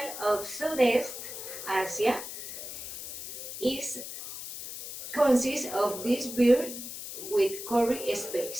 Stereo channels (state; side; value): noise; left; hiss, 9 dB below the sound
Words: of Southeast Asia is consists of this beer with curry